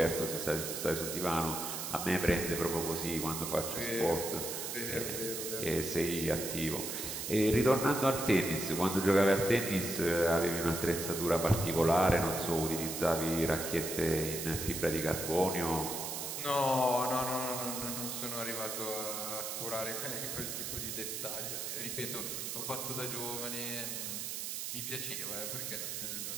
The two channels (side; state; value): right; noise; hiss, 4 dB below the sound